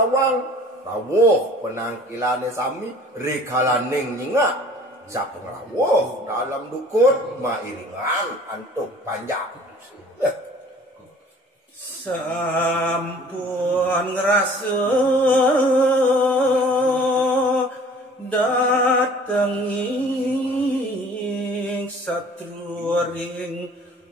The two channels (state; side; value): normal; both; correlation 0.50